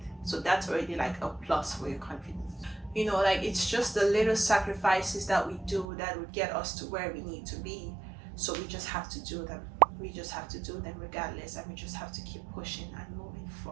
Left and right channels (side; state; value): left; drops out; at 5.9 s